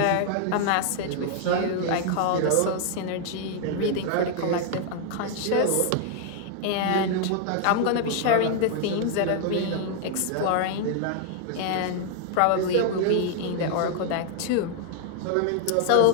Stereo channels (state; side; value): different; both; correlation 0.00